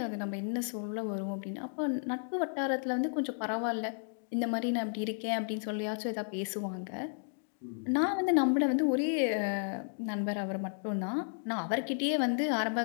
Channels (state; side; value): silent; right; digital silence